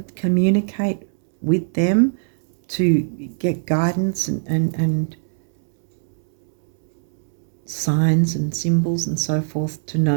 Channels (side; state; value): left; silent; digital silence